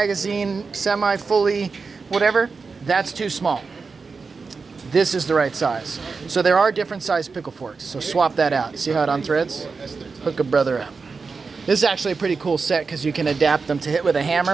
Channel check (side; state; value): left; quieter; 4.7 dB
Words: semi-fully, whatever. That's too small. This is the right size. So there are different size pickle forks. So swap that out. See how it unthreads? Hook a brother up. This is actually a pretty cool set because you can adapt them to hit with a